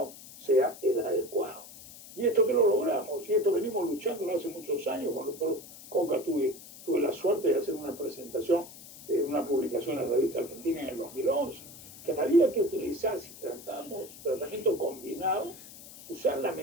sea el adecuado. Y esto que lo logramos, y esto venimos luchando hace muchos años. Con el doctor Coca tuve la suerte de hacer una presentación, una publicación en la revista Argentina en el 2011, que había que utilizar, si tratamos tratamiento combinado, usar la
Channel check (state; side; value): noise; left; hiss, 17 dB below the sound